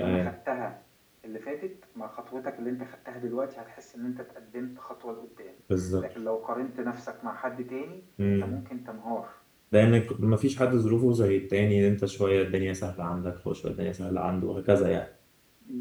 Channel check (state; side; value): identical; both; correlation 1.00